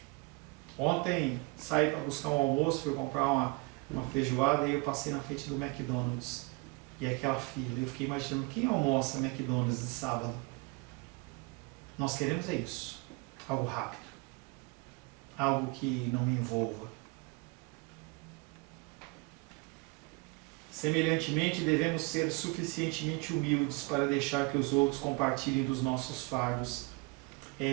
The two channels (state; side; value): quieter; left; 27.8 dB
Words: Ontem saí para buscar um almoço, fui comprar uma feijoada e eu passei na frente do McDonald's. E aquela fila, eu fiquei imaginando quem almoça McDonald's de sábado. Nós queremos é isso. Algo rápido. Algo que não me envolva. Semelhantemente, devemos ser suficientemente humildes para deixar que os outros compartilhem dos nossos fardos.